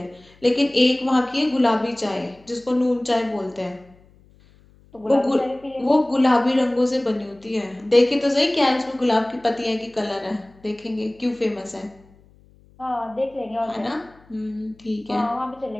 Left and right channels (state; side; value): noise; left; hum, 28 dB below the sound